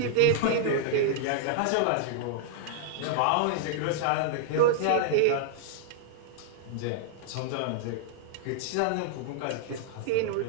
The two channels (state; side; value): different; both; correlation -0.01